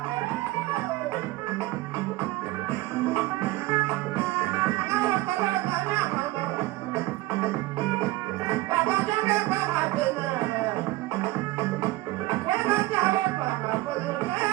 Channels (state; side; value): quieter; left; 18.6 dB